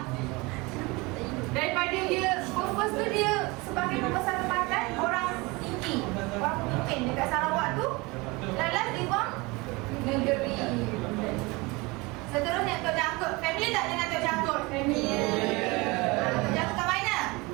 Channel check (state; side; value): quieter; left; 24.7 dB